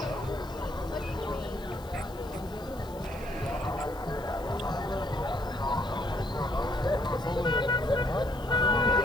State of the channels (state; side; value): noise; left; hiss, 22 dB below the sound